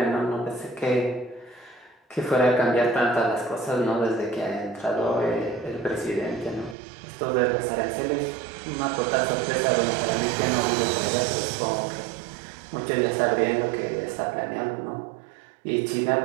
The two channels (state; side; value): drops out; left; at 6.8 s